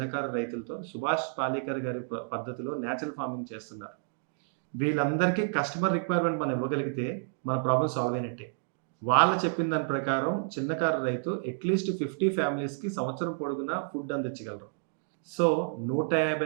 రైతులతో సుభాష్ పాలేకర్ గారి పద్ధతిలో న్యాచురల్ ఫార్మింగ్ చేస్తున్నారు. వీళ్ళందరికీ కస్టమర్ రిక్వైర్మెంట్ మనం ఇవ్వగలిగితే మన ప్రాబ్లం సాల్వ్ అయినట్టే. వాళ్ళు చెప్పిన దాని ప్రకారం చిన్నకారు రైతు అట్లీస్ట్ 50 ఫ్యామిలీస్కి సంవత్సరం పొడుగునా ఫుడ్ అందించగలరు. సో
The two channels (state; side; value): silent; left; digital silence